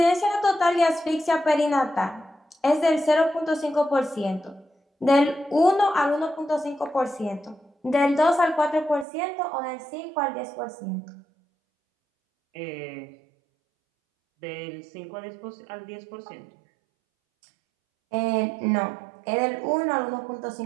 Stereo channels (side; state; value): left; drops out; at 9.1 s